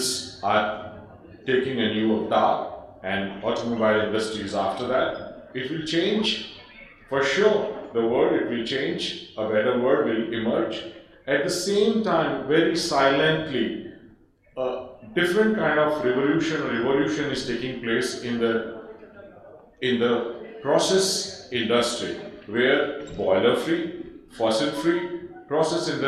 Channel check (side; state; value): both; identical; correlation 1.00